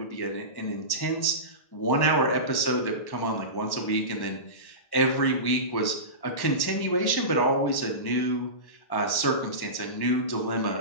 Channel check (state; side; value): late; right; 1.1 ms